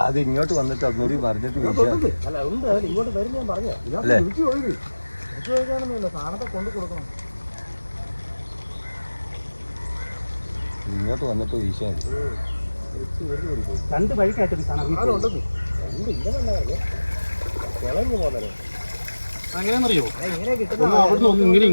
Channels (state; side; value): inverted; both; correlation -1.00